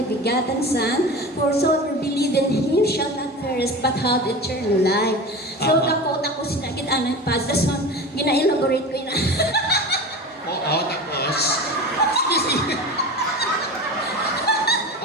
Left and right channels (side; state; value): both; normal; correlation 0.31